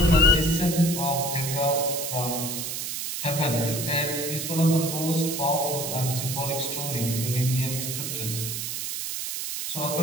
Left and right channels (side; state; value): right; noise; hiss, 4 dB below the sound